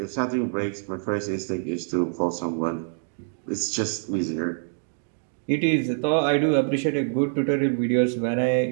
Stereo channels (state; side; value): silent; left; digital silence